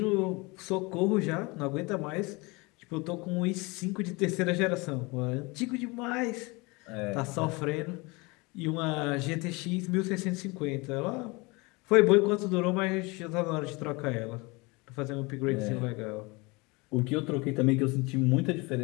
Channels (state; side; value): quieter; right; 26.0 dB